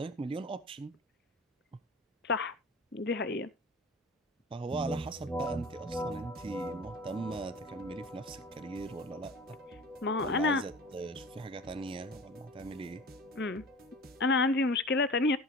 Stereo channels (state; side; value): normal; both; correlation 0.38